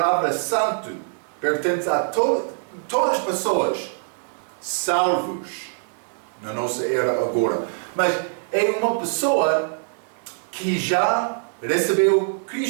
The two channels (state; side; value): silent; left; digital silence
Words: santo pertence a todas as pessoas salvos na nossa era agora. Mas é uma pessoa que já recebeu